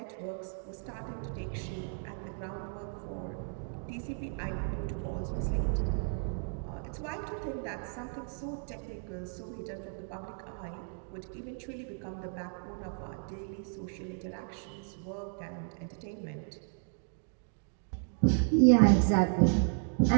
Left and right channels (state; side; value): silent; left; 55 dB below the other